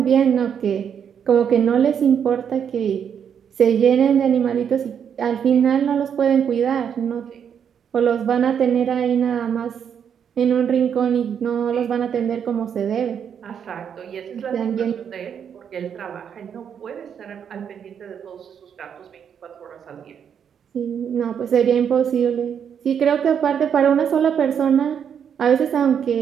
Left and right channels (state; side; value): quieter; left; 7.9 dB